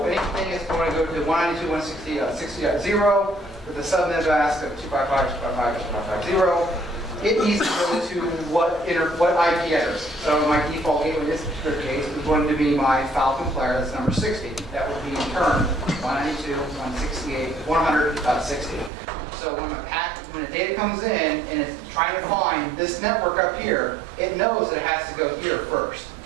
anything is going to go to 192.168.60.0 with the subnet mask of 255.255.255.0. It needs to go to what IP address. So my default gateway in this particular case is going to be my Falcon player, that's number 60. That would be in turn 192.168.100.60. So when the data comes in and it's trying to find this network up here, it knows that it has to go here first.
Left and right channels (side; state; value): left; drops out; at 18.9 s